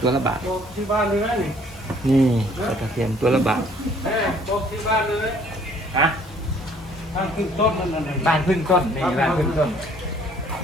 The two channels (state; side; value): normal; both; correlation 0.59